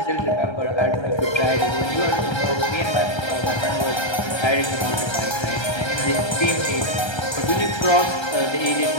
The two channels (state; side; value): late; right; 1.3 ms